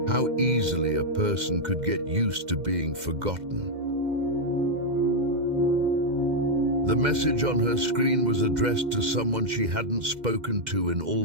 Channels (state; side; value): late; left; 2.1 ms